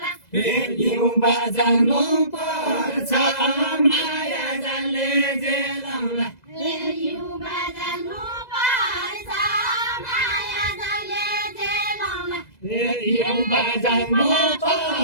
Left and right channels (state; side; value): late; right; 2.0 ms